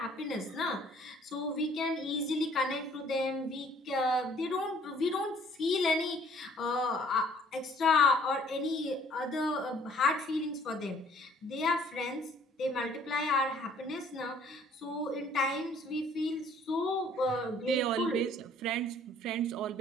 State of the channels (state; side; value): normal; both; correlation 0.58